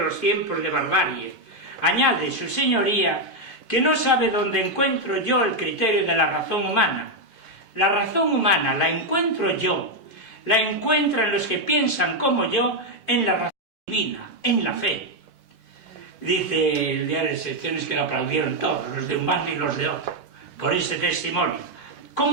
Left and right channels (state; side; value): late; left; 11 ms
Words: los tiempos de barbarie. Añade su señoría que no sabe dónde encuentro yo el criterio de la razón humana. La razón humana la encuentro yo, la encuentran los que piensan como yo en la razón divina, en la fe. Dice el diario de secciones que lo aplaudieron todos, los de un bando y los de otro, por ese testimonio.